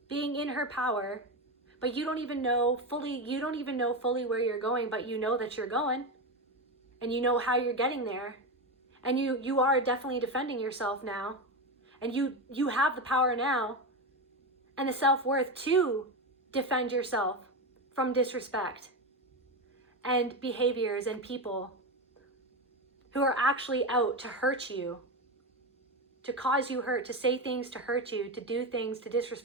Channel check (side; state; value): both; normal; correlation 0.15